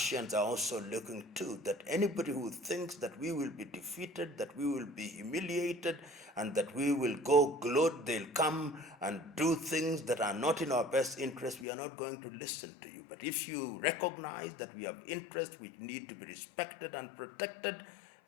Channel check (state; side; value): drops out; right; at 11.7 s